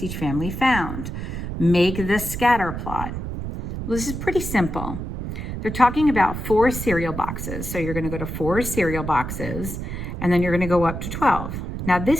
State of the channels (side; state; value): right; noise; rumble, 6 dB below the sound